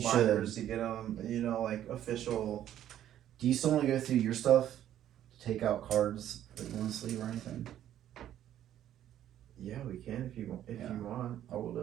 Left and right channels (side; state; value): left; quieter; 11.5 dB